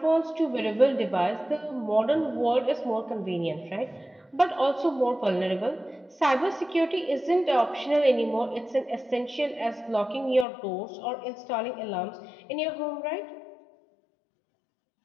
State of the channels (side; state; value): right; drops out; at 10.5 s